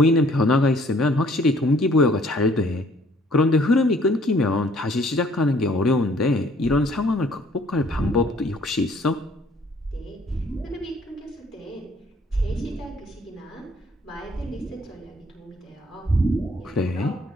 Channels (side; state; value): both; normal; correlation 0.60